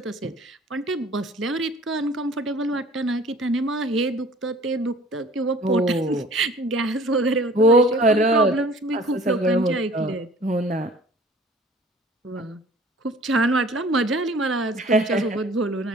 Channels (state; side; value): normal; both; correlation 0.50